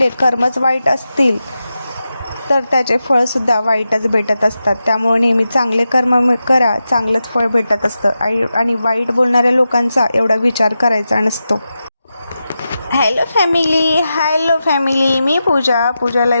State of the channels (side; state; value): both; inverted; correlation -0.90